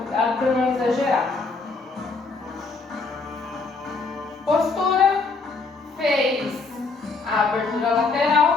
para não exagerar. Postura, fez a abertura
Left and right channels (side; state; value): right; quieter; 4.1 dB